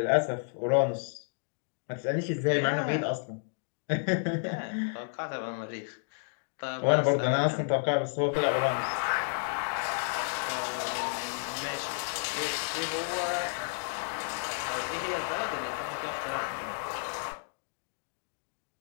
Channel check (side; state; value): right; silent; digital silence